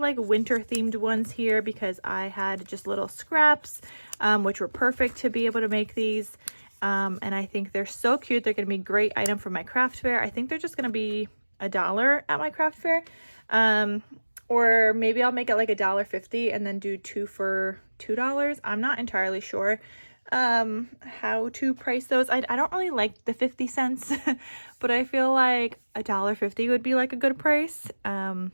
winter themed ones here because I had just little scraps, which were perfect to be able to make these. And I think they're so cute. They're going to be a great item for my craft fair. I think they're just going to be $1 at my craft fair. Or maybe I'll make it like $1.50 and then do 2 for $2. I'm not entirely sure how to price those. I don't really like the 50 cents, but I feel like $1.50 would be like a good price,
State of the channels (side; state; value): both; inverted; correlation -1.00